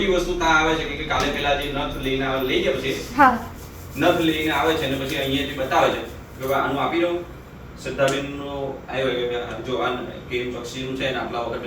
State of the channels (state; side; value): identical; both; correlation 1.00